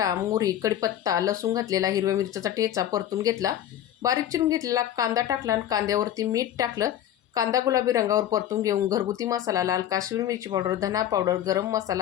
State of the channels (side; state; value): right; quieter; 11.5 dB